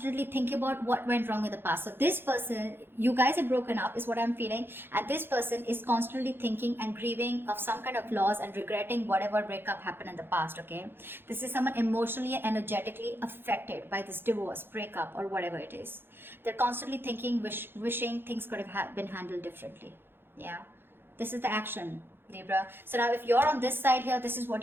thinking about what went wrong in the past. So this person, you guys have broken up is what I'm feeling. And this person is constantly thinking and grieving of some kind of loss and regretting whatever breakup happened in the past, okay? This is someone emotionally and energetically affected by this divorce, breakup, or whatever it is. They're constantly thinking, wishing things could have been handled differently. Yeah, this is the action, Libra. So now if you're on this side here, this is what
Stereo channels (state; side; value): late; left; 0.10 ms